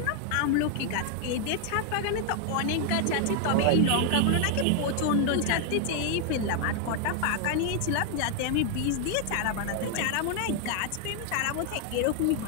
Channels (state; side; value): different; both; correlation 0.00